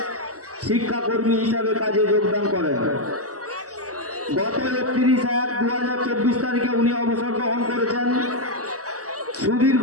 শিক্ষাকর্মী হিসাবে কাজে যোগদান করেন। গত 31/1/2024 তারিখে উনি অবসর গ্রহণ করেছেন। সুদীর্ঘ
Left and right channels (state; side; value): late; left; 0.66 ms